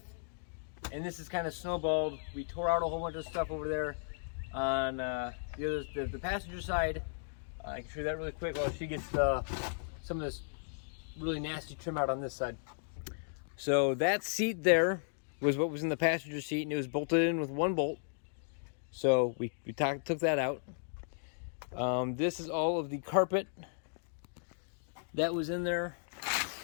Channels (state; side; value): silent; right; digital silence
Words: and this is kind of snowballed. We tore out a whole bunch of stuff over there on the passenger side. I can show you that really quick while she gets some of this really nasty trim out on this side. So that seat there was what was in the passenger seat, and it was bolted in with one bolt. So we took that out. This is all of the carpet that was in there.